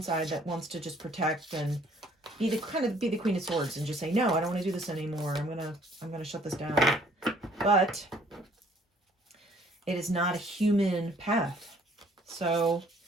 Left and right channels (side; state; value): both; normal; correlation 0.60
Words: side that wants to just protect and be the Queen of Swords and just say, no, I don't want to do this anymore. I'm gonna shut this down. But it is not a human path. So